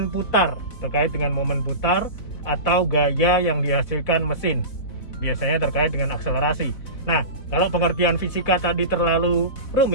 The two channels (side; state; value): right; late; 4.1 ms